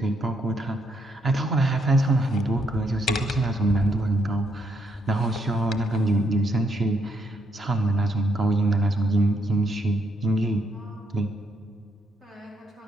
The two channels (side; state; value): both; normal; correlation 0.75